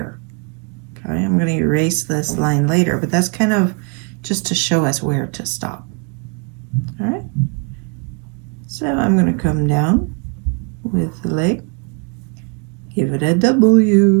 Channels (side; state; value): left; quieter; 35.1 dB